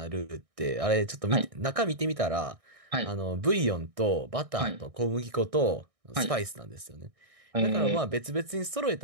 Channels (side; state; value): left; late; 1.6 ms